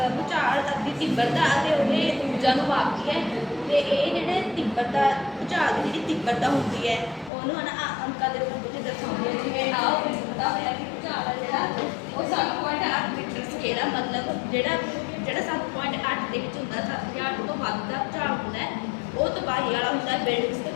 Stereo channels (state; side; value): drops out; right; at 7.3 s